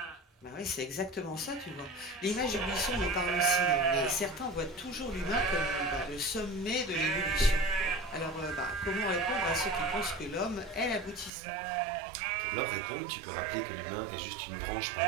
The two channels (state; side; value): drops out; left; at 11.3 s